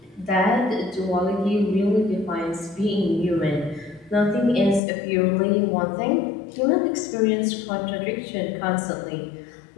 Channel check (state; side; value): drops out; right; at 4.8 s